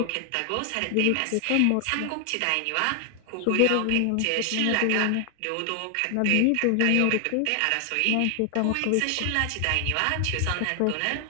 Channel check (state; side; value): different; both; correlation 0.00